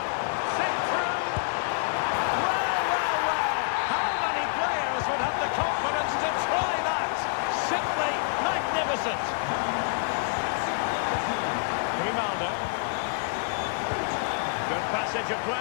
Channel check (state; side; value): silent; right; 57 dB below the other